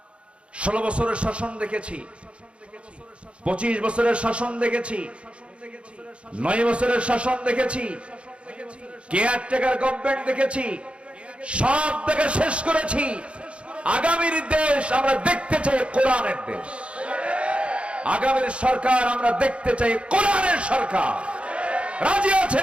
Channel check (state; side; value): late; left; 0.059 ms